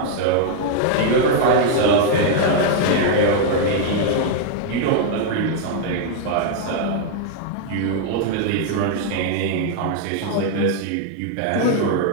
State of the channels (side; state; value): both; different; correlation 0.00